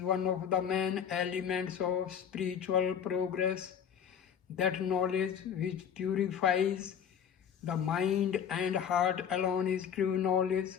of the main elements of spiritual progress. That knowledge which purifies the mind and heart alone is true knowledge.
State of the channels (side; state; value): right; quieter; 8.2 dB